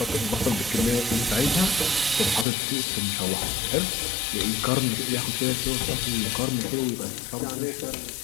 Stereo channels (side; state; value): right; drops out; at 2.5 s